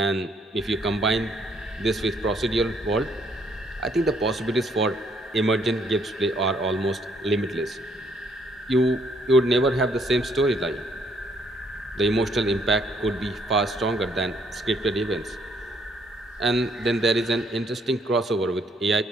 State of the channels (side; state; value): both; normal; correlation 0.68